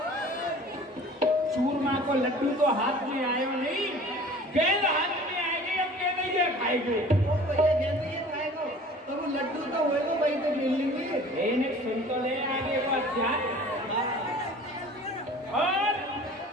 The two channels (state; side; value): normal; both; correlation 0.46